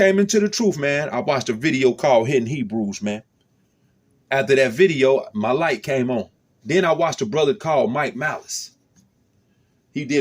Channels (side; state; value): both; identical; correlation 1.00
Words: into the truth, man, I watched a video called Hidden Hebrews, man. After that video, my light came on. Then I watched a brother called Mike Malice. He